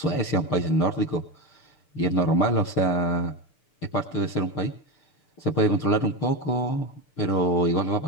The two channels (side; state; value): right; late; 6.7 ms